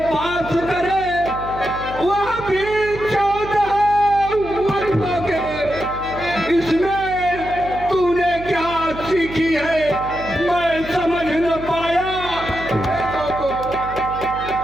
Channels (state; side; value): noise; right; hum, 12 dB below the sound